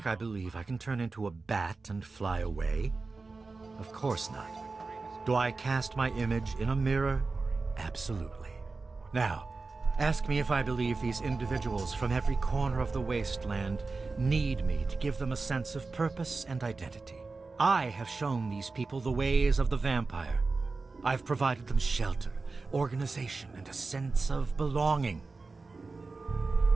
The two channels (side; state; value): left; quieter; 3.9 dB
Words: I believe I can turn into a bat and fly away? Of course not. Do I cast my image in a mirror? Absolutely. Now, ask me if I believe these individuals from every corner of the wasteland need me to give them a sense of purpose and identity. I have shown these people the ways of the vampire. I've provided them shelter, organization, and a sense of belonging.